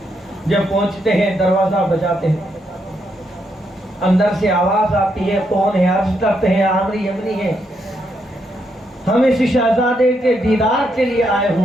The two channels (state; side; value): normal; both; correlation 0.78